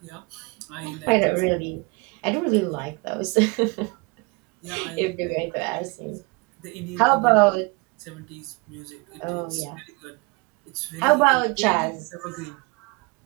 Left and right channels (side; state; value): left; quieter; 28.5 dB